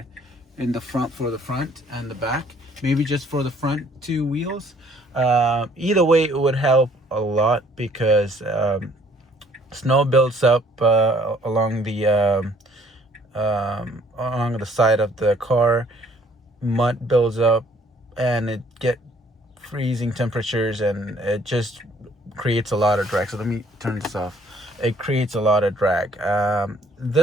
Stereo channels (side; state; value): both; normal; correlation 0.61